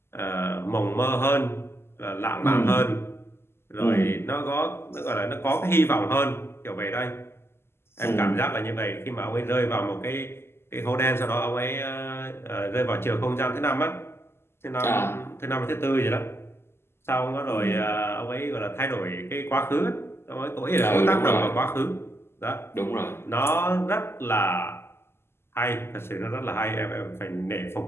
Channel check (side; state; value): right; late; 0.12 ms